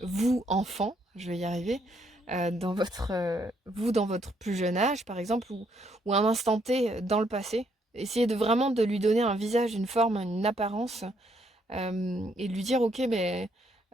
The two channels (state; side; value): normal; both; correlation 0.72